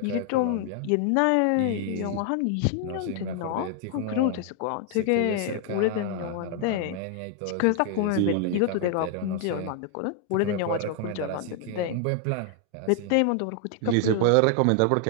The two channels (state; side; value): different; both; correlation 0.00